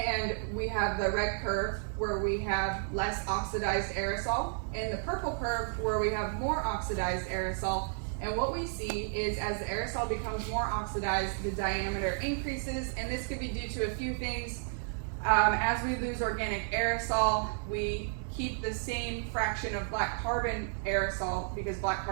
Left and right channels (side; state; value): left; silent; digital silence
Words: we have the red curve where we have less oxidized aerosol, and the purple curve where we have more oxidized aerosol. And what we see is as the aerosol becomes more oxidized, the diameter increases, and this could be due to a few things. As we lose organic aerosol, we keep the same fraction of black carbon aerosol because black